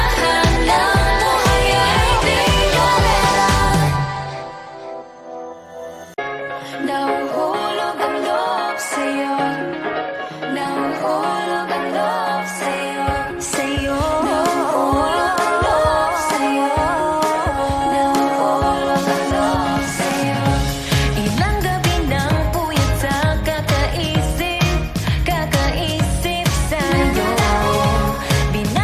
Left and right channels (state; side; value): identical; both; correlation 1.00